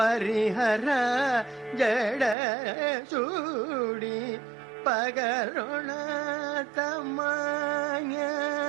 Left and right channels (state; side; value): drops out; left; at 2.4 s